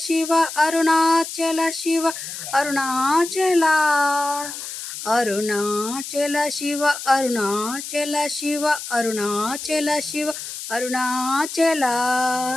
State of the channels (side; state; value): left; noise; hiss, 9 dB below the sound